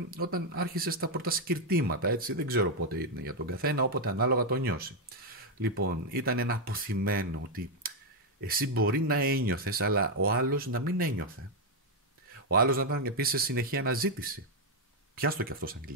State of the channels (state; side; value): normal; both; correlation 0.02